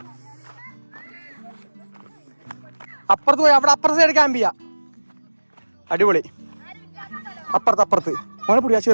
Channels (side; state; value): both; inverted; correlation -1.00